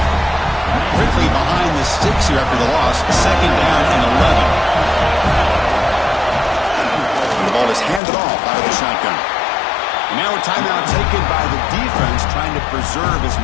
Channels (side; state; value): right; drops out; at 8.0 s